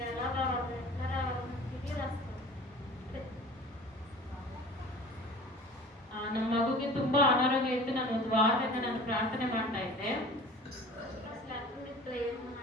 ఎలా రావాలి ఎట్లా రావాలి తిరిగి రాస్తాను. ನಮ್ಮ ಮಗುಗೆ ತುಂಬಾ ಅನಾರೋಗ್ಯ ಇತ್ತು. ನಾನು ಒಂದು ವಾರದಿಂದ ನಾನು ಪ್ರಾರ್ಥನೆ ಮಾಡ್ತಾ ಇದ್ದೆ.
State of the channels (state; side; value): normal; both; correlation 0.42